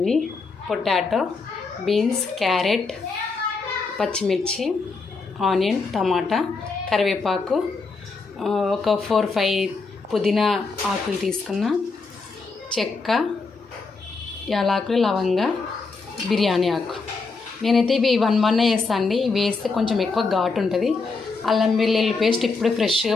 పొటాటో, బీన్స్, క్యారెట్, పచ్చిమిర్చి, ఆనియన్, టమాటా, కరివేపాకు, ఒక 4-5 పుదీనా ఆకులు తీసుకున్న, చెక్క, యాలకులు, లవంగ, బిర్యానీ ఆకు. నేనైతే ఇవి 1 వేస్తాను అండి. ఇవి వేస్తే కొంచెం ఎక్కువ ఘాటు ఉంటుంది. అల్లం వెల్లుల్లి పేస్ట్ ఇప్పుడు ఫ్రెష్గా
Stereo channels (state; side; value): quieter; right; 4.2 dB